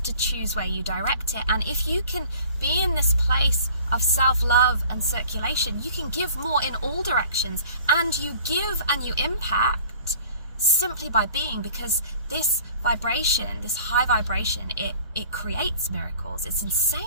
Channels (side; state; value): both; inverted; correlation -0.49